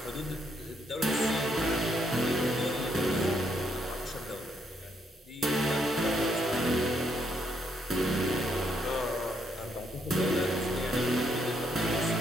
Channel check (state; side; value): normal; both; correlation 0.74